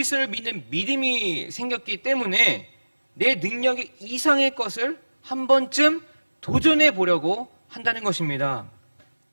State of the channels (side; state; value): both; inverted; correlation -1.00